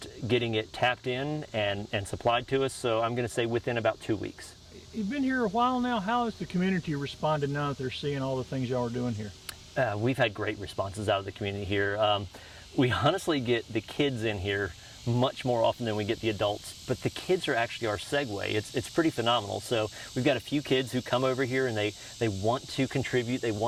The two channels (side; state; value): both; identical; correlation 1.00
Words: getting it tapped in and supplied to us. So I'm going to say within about 2 weeks. You've been here a while now. How has the community responded now that they're seeing all the things y'all are doing here? We've had great responses out of the community here. We honestly get the kids in here much more often than we get the adults, but the kids are actually our segue. It's pretty phenomenal. So we've got a few kids who come over here and they want to contribute, they